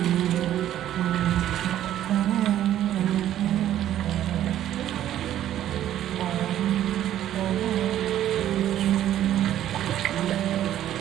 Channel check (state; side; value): quieter; left; 11.9 dB